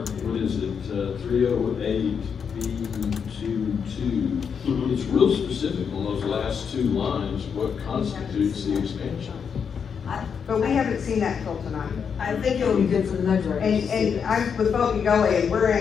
what is it, 308 B22, it's real specific on those last two lines, what constitutes the expansion. But we haven't seen that till tonight. I think it would be good for the mud directors. And I'm with Bogey Gully, and we're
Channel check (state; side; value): quieter; right; 6.7 dB